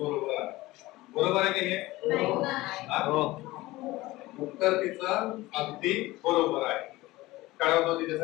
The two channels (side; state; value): right; quieter; 19.0 dB